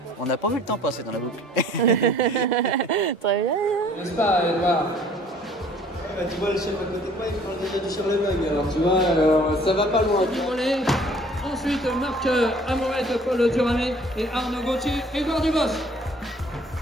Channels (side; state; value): both; normal; correlation 0.54